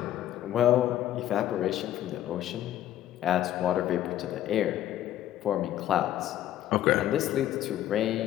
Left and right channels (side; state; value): right; quieter; 12.5 dB